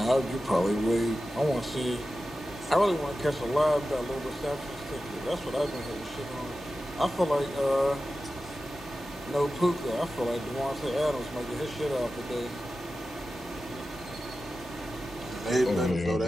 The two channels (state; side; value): normal; both; correlation 0.93